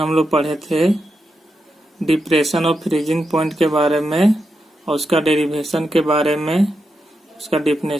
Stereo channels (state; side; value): normal; both; correlation 0.86